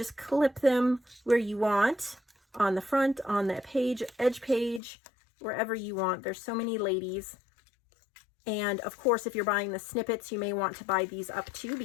clip them where you want, on the front, on the page, edge page, wherever you want. There's so many ladies. And of course, if you're buying the snippets, you may want to buy these up too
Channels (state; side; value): drops out; right; at 4.8 s